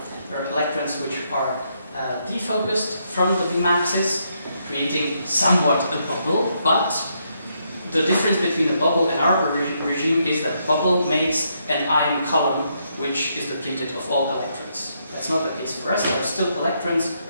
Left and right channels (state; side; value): inverted; both; correlation -0.77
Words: are electrons which are defocused from the beam axis, creating somewhat a bubble, but the difference between the bubble and our regime is that bubble makes an ion column which is depleted of all electrons. That's not the case for us. There are still electrons